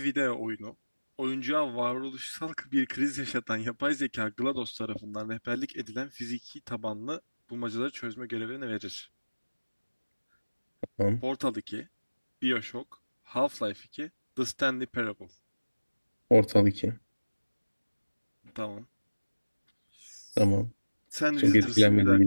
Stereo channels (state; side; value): inverted; both; correlation -1.00